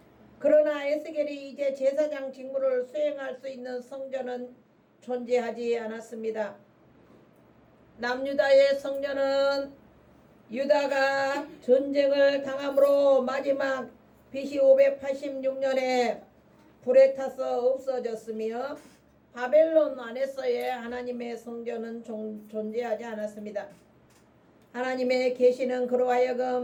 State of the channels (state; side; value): identical; both; correlation 1.00